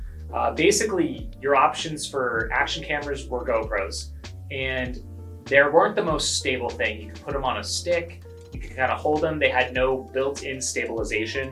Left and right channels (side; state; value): both; identical; correlation 1.00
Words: basically your options for action cameras were GoPros, and they weren't the most stable thing. You could put them on a stick, you could kind of hold them. They had no built-in stabilization.